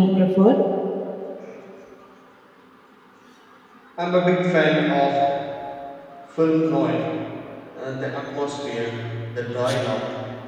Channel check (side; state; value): both; identical; correlation 1.00